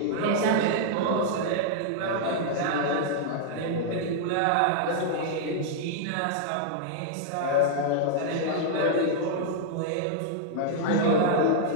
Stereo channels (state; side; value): different; both; correlation -0.01